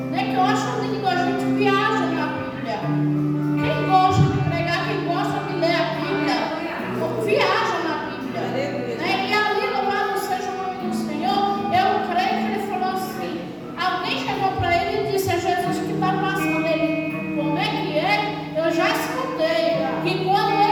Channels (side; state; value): both; identical; correlation 1.00